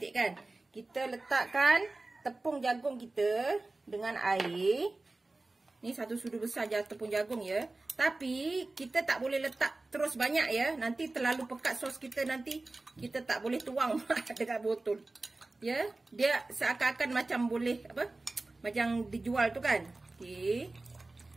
kan. Kita letakkan tepung jagung kita dengan air. Ni 1 sudu besar je tepung jagung ya. Tapi kita tak boleh letak terus banyak ya. Nanti terlalu pekat sos kita, nanti kita tak boleh tuang dekat botol. Ya, dia seakan-akan macam boleh macam dijual tu kan. Okey.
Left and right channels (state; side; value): quieter; left; 3.2 dB